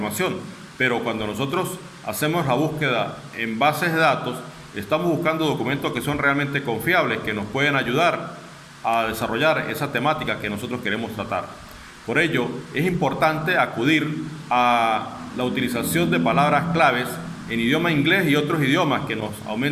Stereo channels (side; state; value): both; identical; correlation 1.00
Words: pero cuando nosotros hacemos la búsqueda en bases de datos, estamos buscando documentos que son realmente confiables, que nos pueden ayudar a desarrollar esa temática que nosotros queremos tratar. Por ello, es importante acudir a la utilización de palabras claves en idioma inglés y otros idiomas que nos